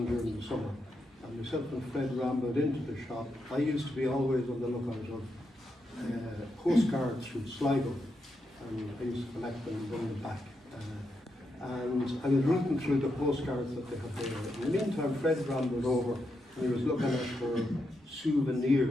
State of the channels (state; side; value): normal; both; correlation 0.84